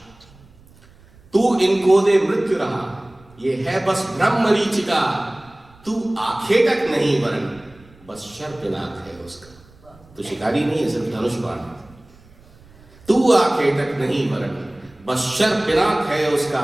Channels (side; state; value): right; noise; rumble, 26 dB below the sound